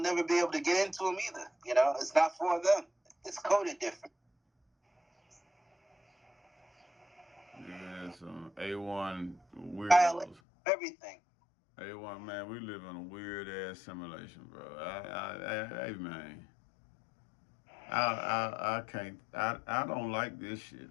never be able to get into them either. You know, it's not for them. It's coded different. Yeah, some A1 weirdos. Everything. A1, man, we live in a weird ass simulation, bro. Hey, man. I can't. I don't like this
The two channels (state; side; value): drops out; right; at 10.4 s